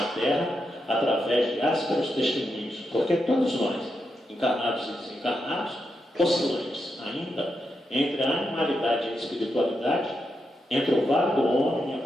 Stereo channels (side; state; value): both; normal; correlation 0.85